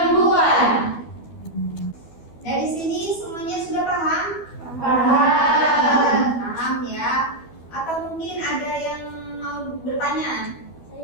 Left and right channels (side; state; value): right; late; 12 ms